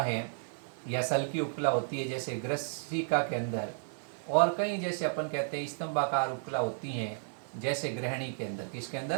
या सल्की उपकला होती है जैसे ग्रसिका के अंदर, और कहीं जैसे अपन कहते हैं स्तंभाकार उपकला होती हैं जैसे ग्रहणी के अंदर। किसके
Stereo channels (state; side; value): silent; left; 56 dB below the other